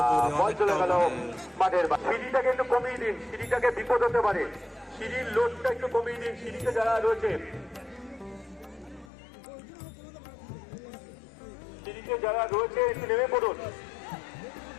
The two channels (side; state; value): right; drops out; at 9.1 s